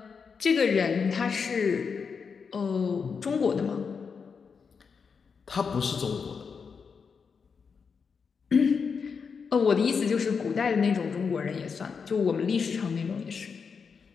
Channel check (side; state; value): right; quieter; 5.8 dB